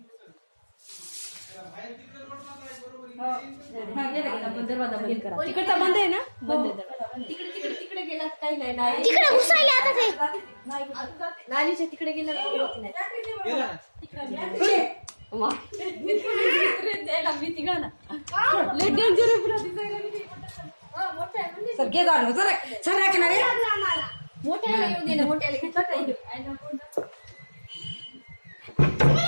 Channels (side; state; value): both; inverted; correlation -1.00